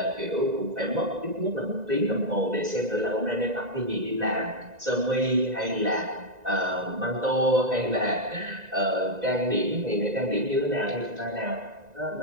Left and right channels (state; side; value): late; left; 1.9 ms